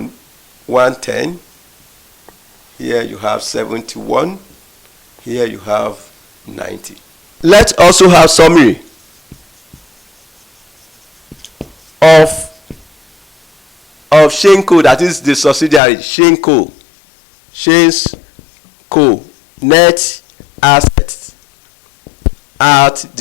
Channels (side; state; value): right; drops out; at 15.8 s